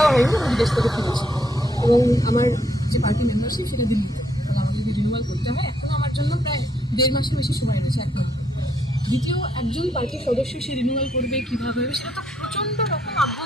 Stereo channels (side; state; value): both; normal; correlation 0.72